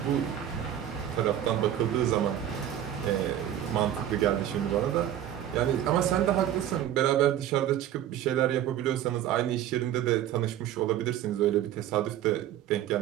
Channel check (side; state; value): left; quieter; 11.3 dB